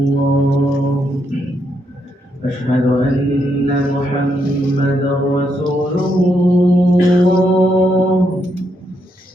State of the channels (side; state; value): both; normal; correlation 0.78